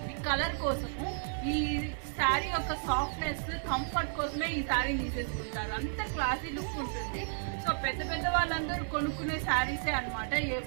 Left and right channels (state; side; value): silent; left; 56 dB below the other